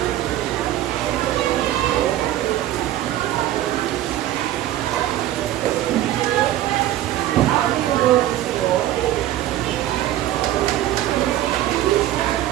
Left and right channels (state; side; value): quieter; left; 13.6 dB